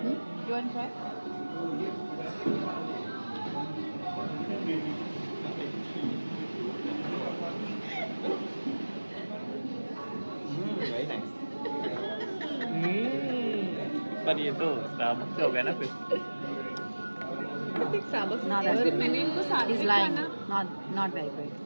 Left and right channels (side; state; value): both; inverted; correlation -1.00